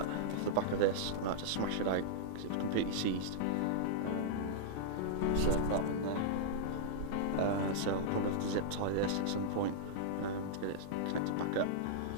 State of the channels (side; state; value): both; different; correlation -0.02